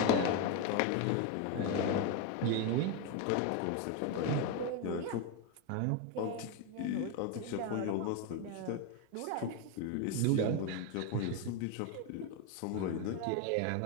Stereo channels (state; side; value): different; both; correlation 0.02